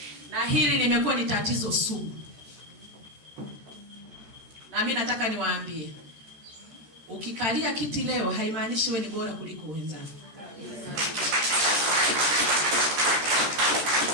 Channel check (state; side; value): late; left; 13 ms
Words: Na hili limekuwa ni tatizo sugu. Na mimi nataka niwaambie, ukikalia kiti leo haimaanishi wewe ni bora kuliko wenzako.